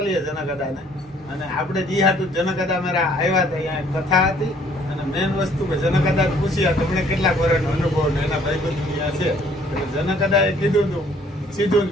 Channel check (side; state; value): both; normal; correlation 0.60